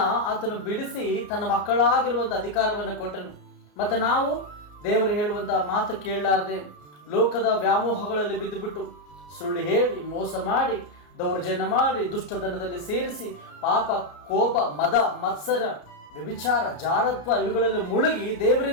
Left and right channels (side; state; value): right; late; 34 ms